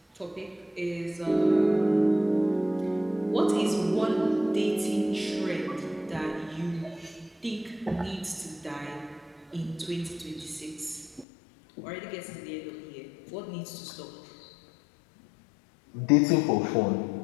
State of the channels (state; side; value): drops out; right; at 11.2 s